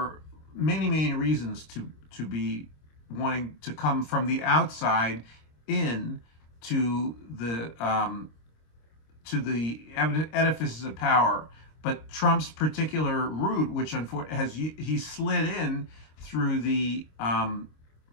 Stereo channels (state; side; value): late; right; 26 ms